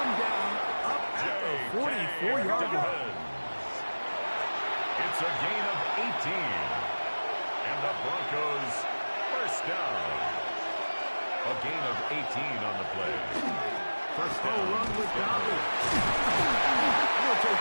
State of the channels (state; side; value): inverted; both; correlation -1.00